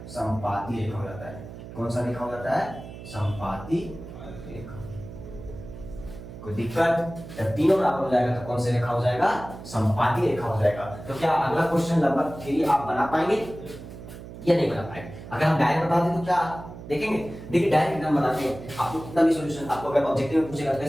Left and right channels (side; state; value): right; noise; hum, 13 dB below the sound